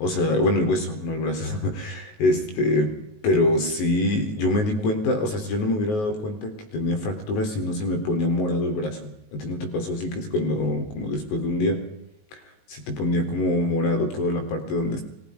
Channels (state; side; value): late; right; 19 ms